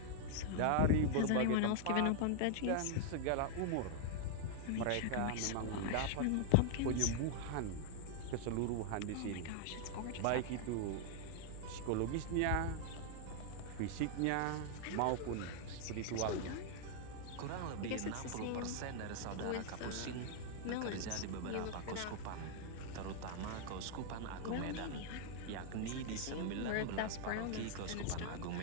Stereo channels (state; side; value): different; both; correlation 0.00